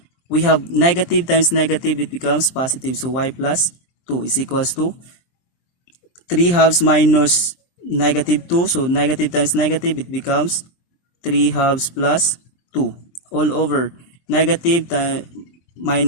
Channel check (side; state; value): right; late; 23 ms